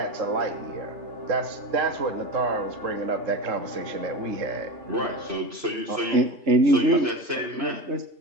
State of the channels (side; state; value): left; late; 3.7 ms